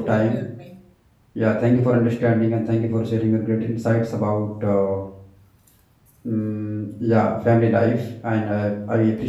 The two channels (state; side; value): identical; both; correlation 1.00